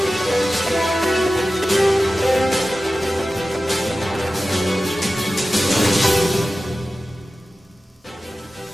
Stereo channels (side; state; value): both; normal; correlation 0.95